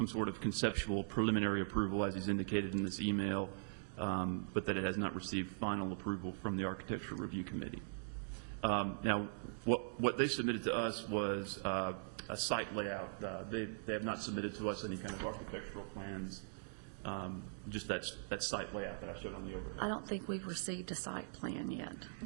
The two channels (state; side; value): silent; left; digital silence